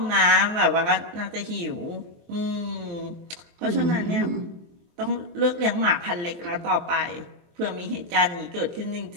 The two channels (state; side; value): late; left; 23 ms